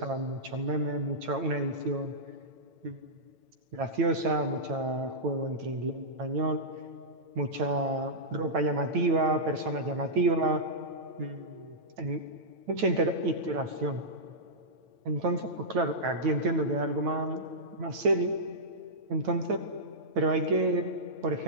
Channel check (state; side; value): late; left; 9.1 ms